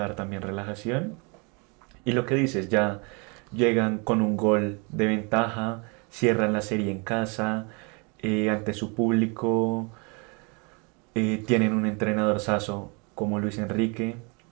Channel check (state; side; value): quieter; left; 32.0 dB